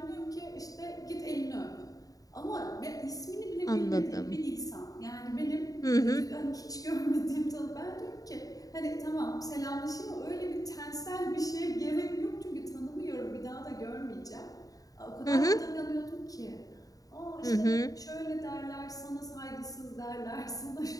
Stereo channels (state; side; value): late; right; 0.18 ms